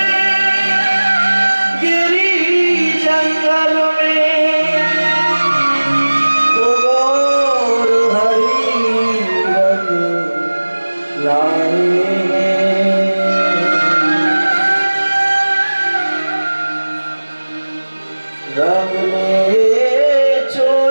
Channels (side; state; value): both; inverted; correlation -1.00